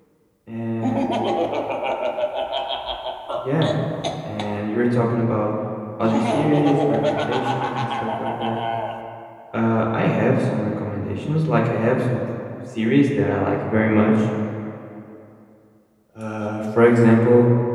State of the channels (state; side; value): identical; both; correlation 1.00